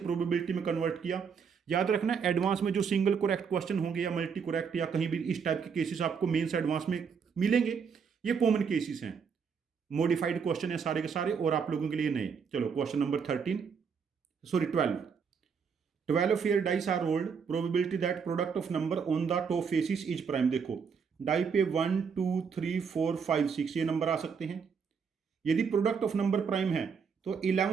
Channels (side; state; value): left; quieter; 6.2 dB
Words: में कन्वर्ट किया, याद रखना एडवांस में जो सिंगल करेक्ट क्वेश्चन होंगे या मल्टी करेक्ट या कहीं भी इस टाइप के केसेस आपको मेंस एडवांस में मिलेंगे, ये कॉमन केसेस हैं। मॉडिफाइड क्वेश्चन है सारे के सारे और आप लोगों के लिए नए। चलो question number 12 fair dice are rolled, probability that product of number on the top faces is prime. देखो डाई पे 1 2 3 4 5 6 ये नंबर आ सकते हैं। यदि प्रोडक्ट ऑफ नंबर प्राइम है तो